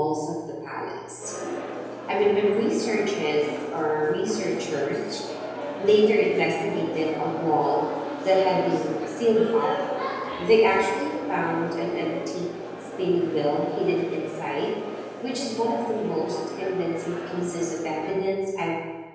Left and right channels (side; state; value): both; identical; correlation 1.00